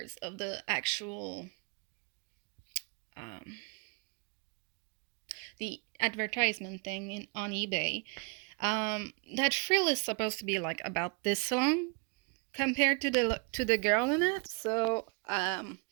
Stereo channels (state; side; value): quieter; left; 34.6 dB